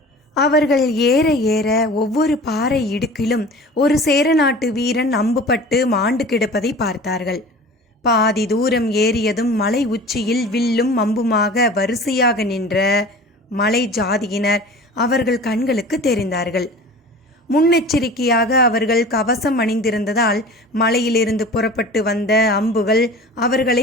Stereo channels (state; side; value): normal; both; correlation 0.40